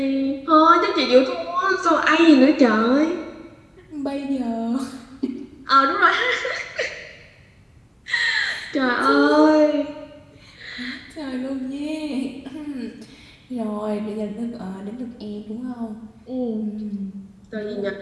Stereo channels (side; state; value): both; identical; correlation 1.00